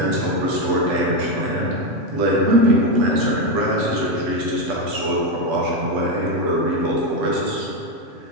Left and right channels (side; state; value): left; late; 8.1 ms